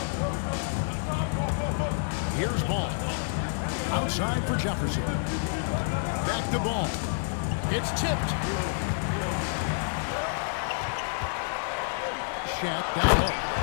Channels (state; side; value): silent; right; digital silence